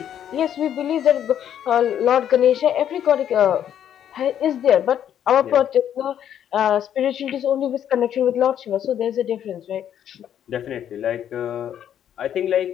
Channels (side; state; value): right; quieter; 9.9 dB